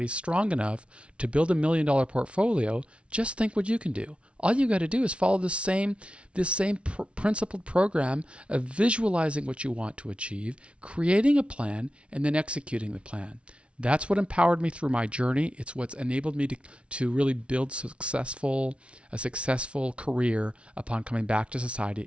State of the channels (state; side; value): late; left; 0.060 ms